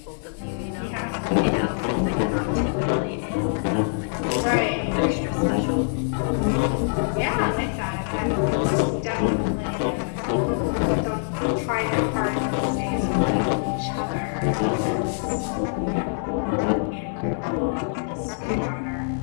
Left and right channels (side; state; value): right; silent; digital silence